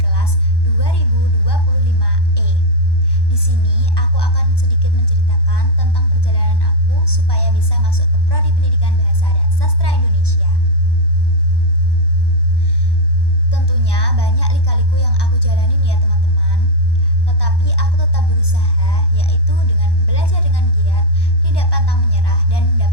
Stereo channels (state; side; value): late; right; 1.1 ms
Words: kelas 2025E. Di sini aku akan sedikit menceritakan tentang perjalanan aku supaya bisa masuk ke Prodi Pendidikan Bahasa dan Sastra Indonesia. Tentunya banyak lika-liku yang aku jalanin ya teman-teman. Tetapi aku tetap berusaha, yaitu dengan belajar dengan giat, tidak pantang menyerah, dan